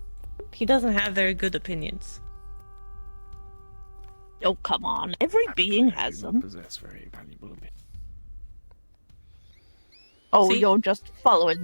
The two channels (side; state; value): both; inverted; correlation -1.00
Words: He doesn't have very good opinions. Oh, come on. Every being I has do not them. possess very valuable opinions. Oh, See? you're just following